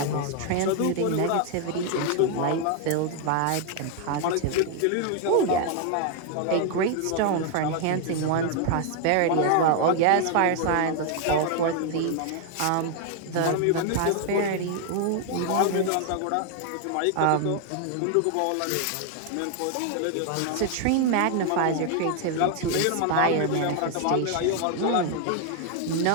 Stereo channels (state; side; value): different; both; correlation 0.00